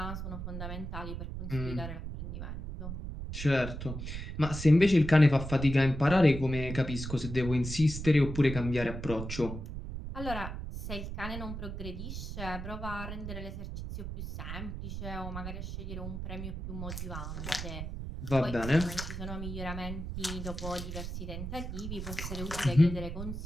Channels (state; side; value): noise; right; rumble, 6 dB below the sound